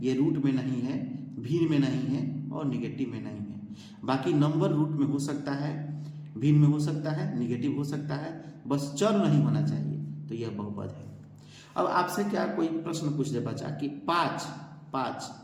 ये रूट में नहीं है, भिन्न में नहीं है, और निगेटिव में नहीं है। बाकी नंबर रूट में हो सकता है, भिन्न में हो सकता है, निगेटिव हो सकता है, बस चर नहीं होना चाहिए, तो यह बहुपद है। अब आपसे क्या कोई प्रश्न पूछ दे बच्चा कि 5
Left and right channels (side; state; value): both; identical; correlation 1.00